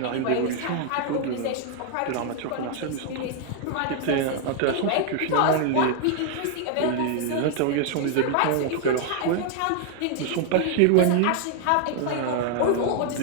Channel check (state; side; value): different; both; correlation 0.00